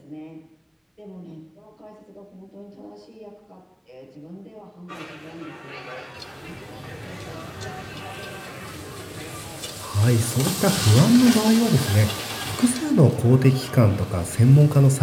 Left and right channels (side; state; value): both; identical; correlation 1.00